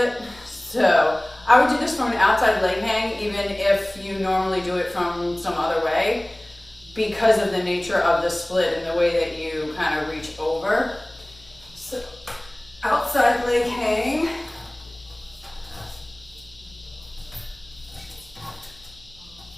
So I would do this from an outside leg hang, even if you normally do it from some other way, because of the nature of the split and the way that you kind of reach over. So outside leg hang.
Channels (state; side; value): noise; left; hum, 26 dB below the sound